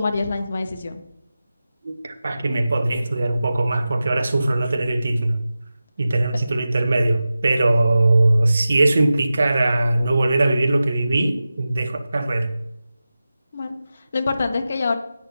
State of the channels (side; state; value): both; inverted; correlation -0.94